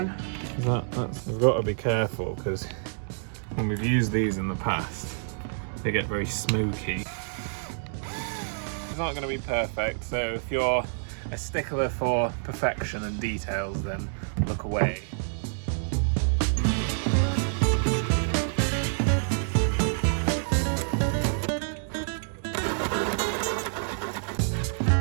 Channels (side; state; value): left; silent; digital silence